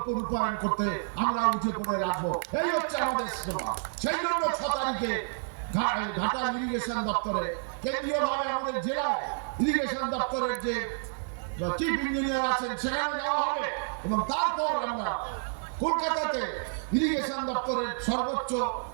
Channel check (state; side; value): silent; left; 56 dB below the other